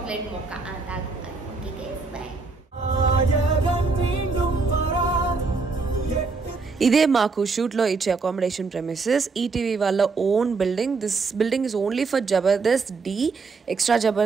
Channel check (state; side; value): quieter; left; 4.4 dB